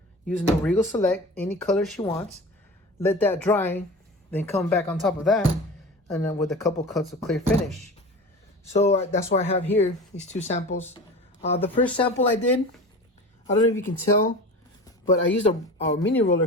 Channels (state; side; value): normal; both; correlation 0.34